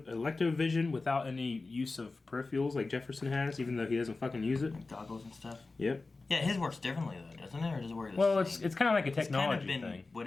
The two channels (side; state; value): right; quieter; 3.6 dB